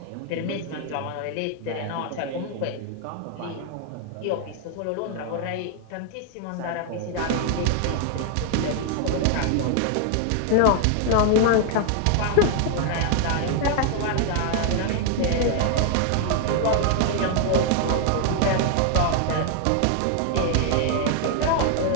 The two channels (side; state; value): both; different; correlation 0.00